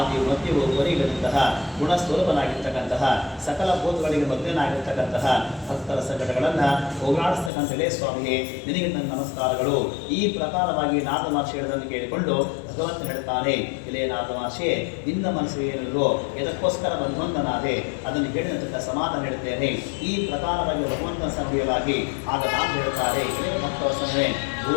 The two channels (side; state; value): right; drops out; at 7.5 s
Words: ಮಧ್ಯವು ಕೊನೆಯಿಲ್ಲದಂತಹ ಗುಣಸ್ವರೂಪನಾಗಿರ್ತಕ್ಕಂತಹ ಸಕಲ ಭೂತಗಳಿಗೆ ಮಗ್ನನಾಗಿರ್ತಕ್ಕಂತಹ ಭಕ್ತರ ಸಂಕಟಗಳನ್ನು ಹೋಗಲಾಡಿಸ್ತಕ್ಕಂಥಲೇ ಸ್ವಾಮಿಯೇ ನಿನಗೆ ನನ್ನ ನಮಸ್ಕಾರಗಳು. ಈ ಪ್ರಕಾರವಾಗಿ ನಾರದ ಮಹರ್ಷಿ ಹೇಳೋದನ್ನು ಕೇಳಿಕೊಂಡು ಭಗವಂತ ಹೇಳ್ತಾನೆ, ಇಲೇ ನಾರದ ಮಹರ್ಷಿಯೇ, ನಿನ್ನ ಮನಸ್ಸು ಏನಿಲ್ಲೋ ಎದಕ್ಕೋಸ್ಕರ ಬಂಧನಾದೆ ಅದನ್ನು ಹೇಳಿದಂತ ಸಮಾಧಾನ ಹೇಳ್ತೇನೆ. ಈ ಪ್ರಕಾರವಾಗಿ ಭಗವಂತನ ಸಭೆಯಲಾಗಿ ಆಗ ನಾನು ಹೇಳ್ತಾರೆ, ಇಲೇ ಭಕ್ತವಸನೇ,